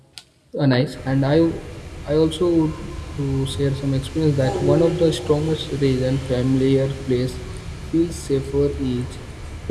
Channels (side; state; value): both; identical; correlation 1.00